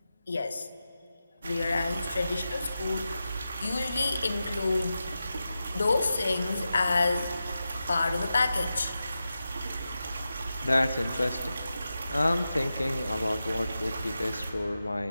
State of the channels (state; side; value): inverted; both; correlation -0.91